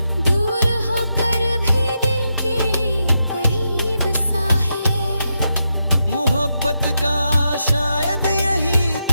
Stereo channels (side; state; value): both; inverted; correlation -0.85